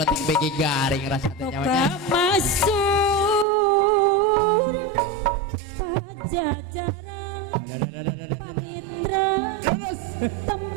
begi garing rasa Toka nyawanya masuk pajajaran pamitra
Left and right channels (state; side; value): drops out; left; at 3.5 s